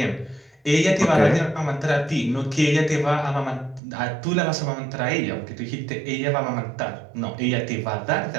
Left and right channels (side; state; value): left; drops out; at 3.8 s